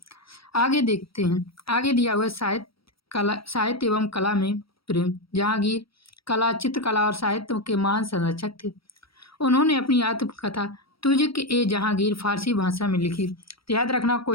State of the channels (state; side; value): late; right; 0.75 ms